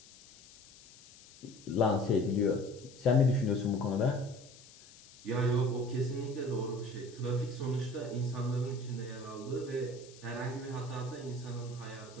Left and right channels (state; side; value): noise; left; hiss, 21 dB below the sound